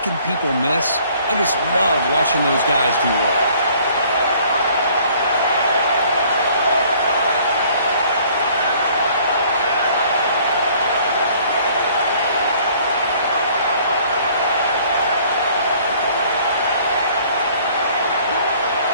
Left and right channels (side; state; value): both; inverted; correlation -0.57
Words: people miss. I just love watching those guys do well.